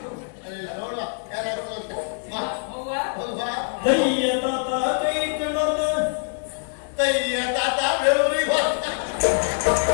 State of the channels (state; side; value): silent; right; 62 dB below the other